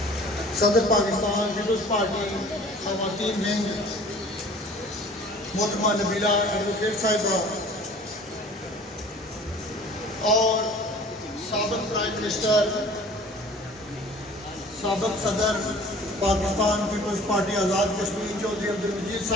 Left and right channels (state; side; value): normal; both; correlation 0.47